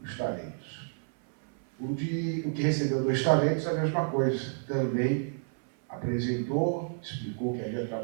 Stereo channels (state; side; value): silent; left; 58 dB below the other